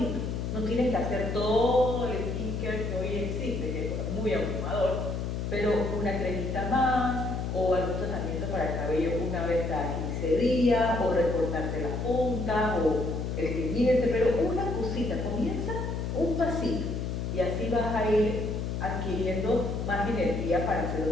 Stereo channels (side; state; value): left; noise; hum, 2 dB below the sound